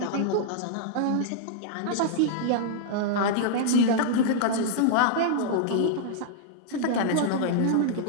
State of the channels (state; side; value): different; both; correlation -0.01